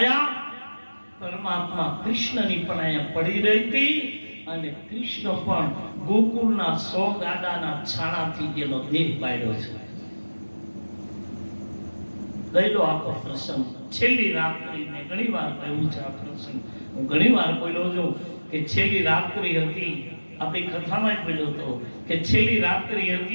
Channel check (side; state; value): both; inverted; correlation -1.00